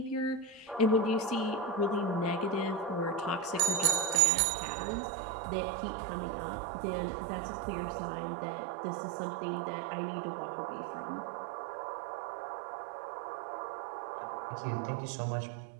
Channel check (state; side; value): drops out; left; at 4.2 s